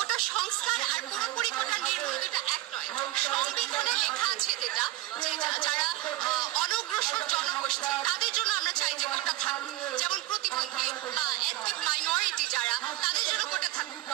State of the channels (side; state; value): left; quieter; 17.2 dB